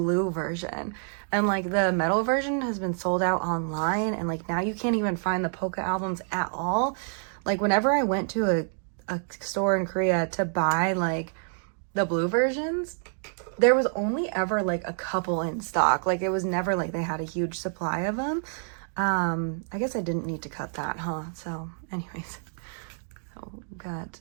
version, and like the metal version has been sold out online, and like now you can't even find the Poca albums at all. Like whenever I went to a store in Korea to buy like the blue versions, there was only ever like a couple in stock. Like it was never like they had a huge supply of them. I guess I didn't need to cut that, huh? So anyways, so we've got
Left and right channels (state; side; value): silent; left; 60 dB below the other